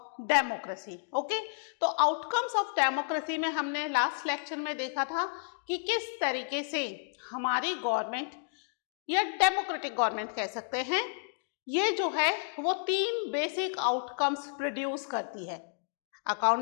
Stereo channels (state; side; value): silent; right; digital silence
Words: democracy. Okay, तो outcomes of democracy में हमने last lecture में देखा था कि किस तरीके से हमारी गवर्नमेंट या डेमोक्रेटिक गवर्नमेंट कह सकते हैं, ये जो है वो तीन बेसिक आउटकम्स प्रोड्यूस करती है.